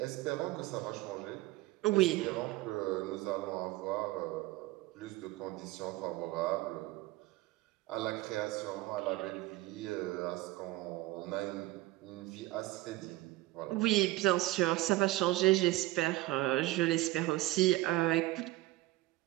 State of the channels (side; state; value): left; quieter; 18.3 dB